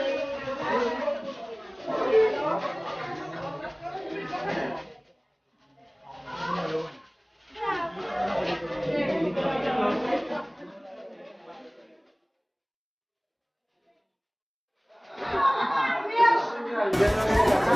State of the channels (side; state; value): both; identical; correlation 1.00